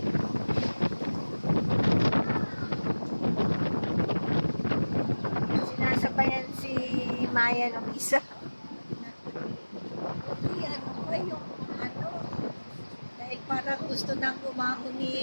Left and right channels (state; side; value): inverted; both; correlation -1.00